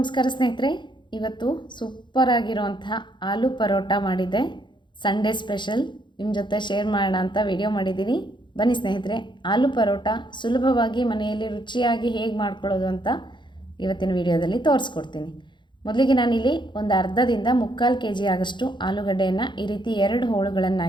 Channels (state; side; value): late; right; 0.23 ms